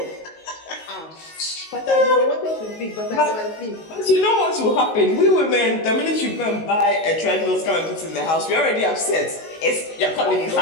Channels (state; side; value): late; right; 19 ms